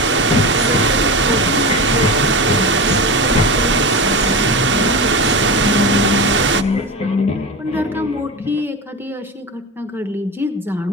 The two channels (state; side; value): normal; both; correlation 0.24